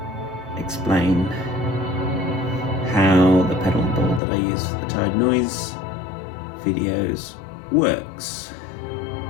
explain how the pedal board that I use for the Tide Noise videos works.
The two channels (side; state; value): right; drops out; at 4.2 s